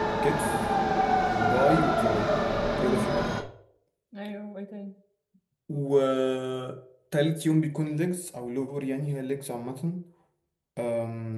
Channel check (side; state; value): both; identical; correlation 1.00